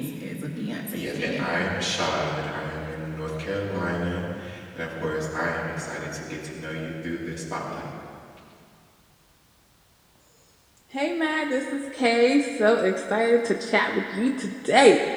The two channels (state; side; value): identical; both; correlation 1.00